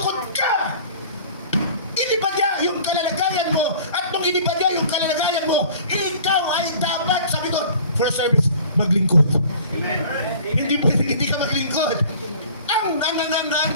ka. Iniba niya yung kalalagayan mo. At nung iniba niya yung kalalagayan mo, ikaw ay dapat, sabi doon, for service, maglingkod. Amen. Hindi pwedeng hindi ka maglingkod. Ang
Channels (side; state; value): both; inverted; correlation -0.47